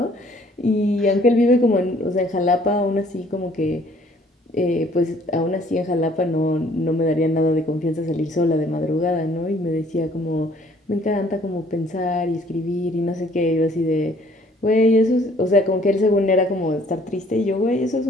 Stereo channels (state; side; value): normal; both; correlation 0.59